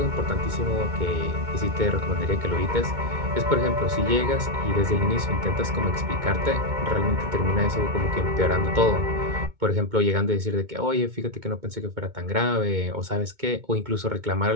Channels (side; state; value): left; late; 2.2 ms